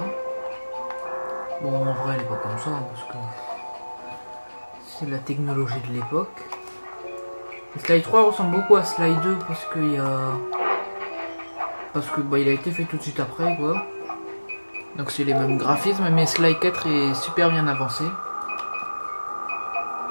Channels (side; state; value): both; inverted; correlation -1.00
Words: Bon en vrai elle est pas comme ça, hein, parce que c'est la technologie de l'époque. Sly 3 ressemble beaucoup à Sly 2 parce qu'il y a... il a été fait tout de suite après quoi. Donc c'est les mêmes graphismes, mais Sly 4 est super bien avancé. Enquête